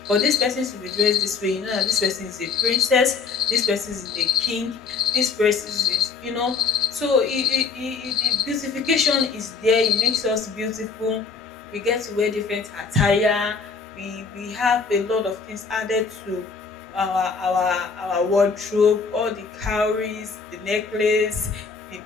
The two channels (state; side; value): quieter; right; 5.1 dB